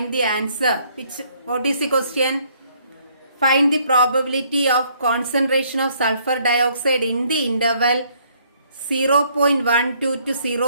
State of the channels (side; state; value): both; inverted; correlation -0.65